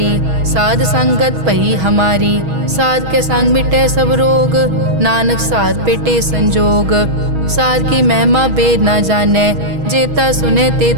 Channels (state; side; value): late; left; 6.3 ms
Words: साध संगत पई हमारी। साध के संग मिटे सब रोग, नानक साध पेटे संजोग। साध की महिमा बेद ना जाने, जेता सुने